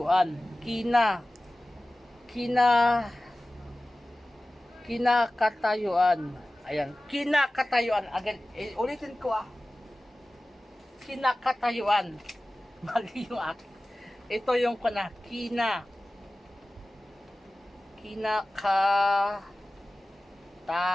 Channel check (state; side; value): normal; both; correlation 0.97